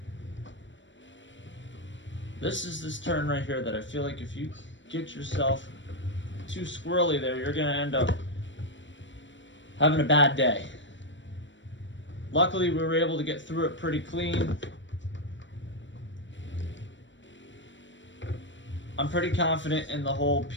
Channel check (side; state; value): right; late; 0.54 ms